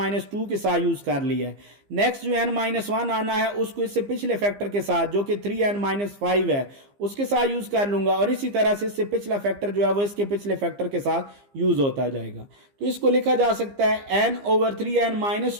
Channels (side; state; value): left; late; 15 ms